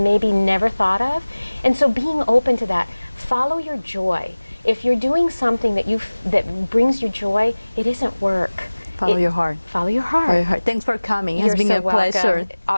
never thought of. And so being open to that, follow your joy. If you're doing something that brings you joy, it isn't work. Follow your heart. Follow your heart. Follow your heart. Thanks for coming. It has been so a pleasure.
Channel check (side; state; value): both; inverted; correlation -1.00